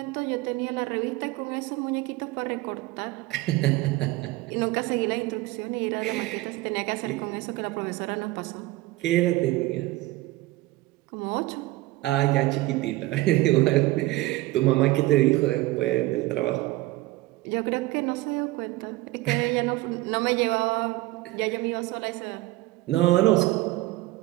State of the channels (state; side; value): quieter; left; 19.0 dB